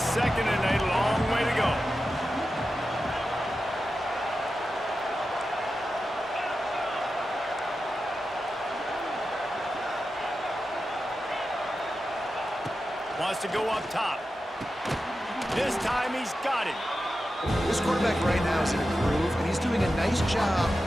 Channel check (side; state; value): both; normal; correlation 0.91